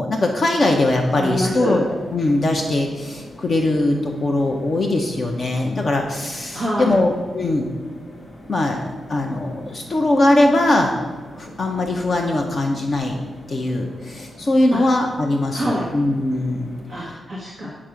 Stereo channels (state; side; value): normal; both; correlation 0.90